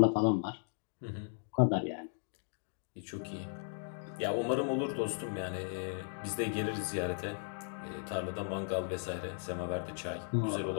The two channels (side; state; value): right; silent; digital silence